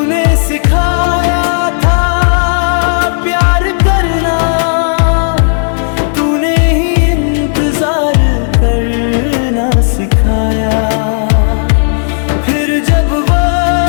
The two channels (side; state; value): right; silent; digital silence